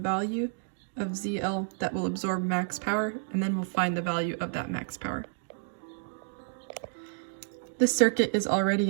of ZL that will absorb max power, and then we'll find the value of that max power. This circuit is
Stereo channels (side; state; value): left; silent; digital silence